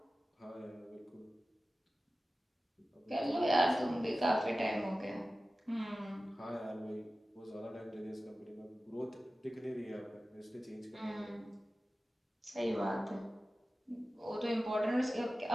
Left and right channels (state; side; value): normal; both; correlation 0.95